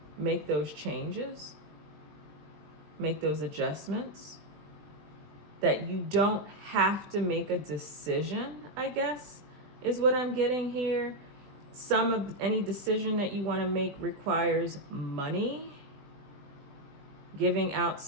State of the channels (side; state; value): left; late; 20 ms